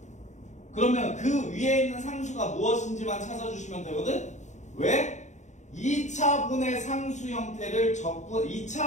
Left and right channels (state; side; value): late; right; 0.34 ms